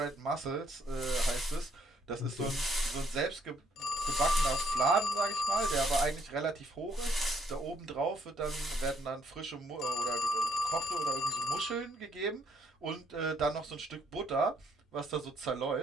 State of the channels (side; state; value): both; normal; correlation 0.67